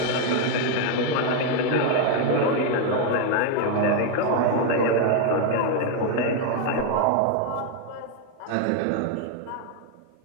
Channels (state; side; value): different; both; correlation 0.01